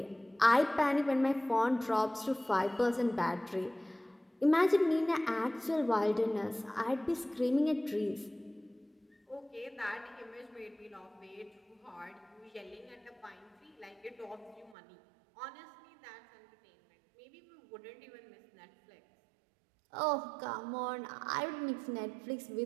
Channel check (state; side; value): drops out; left; at 14.8 s